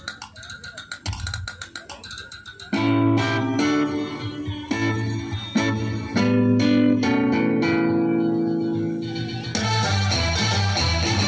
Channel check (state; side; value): identical; both; correlation 1.00